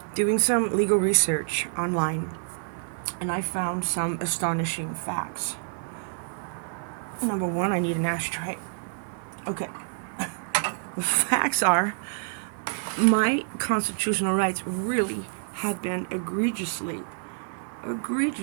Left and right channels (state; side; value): silent; left; digital silence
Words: doing some legal research online, and I found some astonishing facts. Number one, I need an ashtray. Okay. The facts are my constitutional rights really have been egregiously